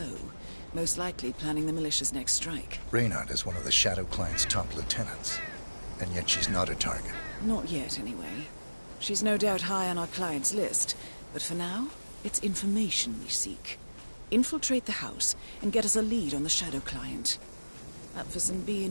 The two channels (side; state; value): both; inverted; correlation -1.00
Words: most likely planning the militia's next strike. Reynard is one of the Shadow Client's top lieutenants, and yet she's not a target. Not yet, anyway. She's no doubt high on our client's list, but for now, it's information we seek. Infiltrate the house and get us a lead on the Shadow Client. Up for some